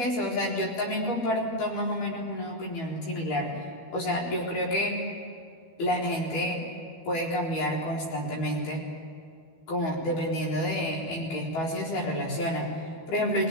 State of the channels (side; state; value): right; late; 12 ms